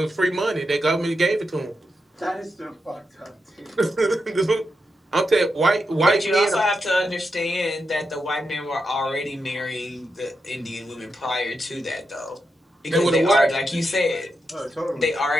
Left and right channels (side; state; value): both; normal; correlation 0.86